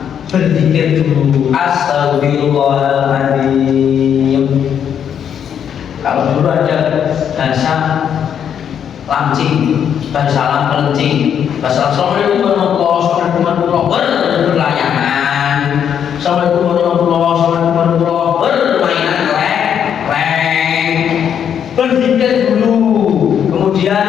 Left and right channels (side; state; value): right; quieter; 8.5 dB